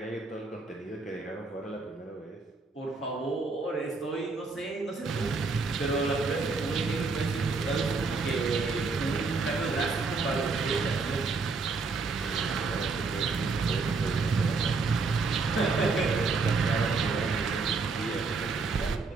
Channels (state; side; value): quieter; left; 4.2 dB